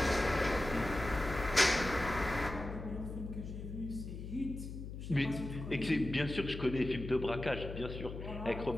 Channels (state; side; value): noise; left; hum, 8 dB below the sound